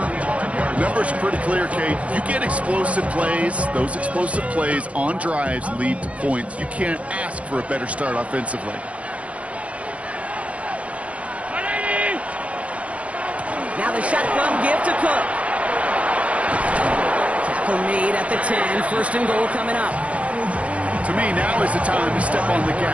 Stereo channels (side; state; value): left; late; 0.064 ms